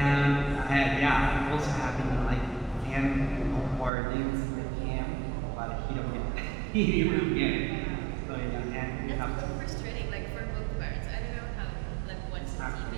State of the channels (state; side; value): drops out; left; at 3.9 s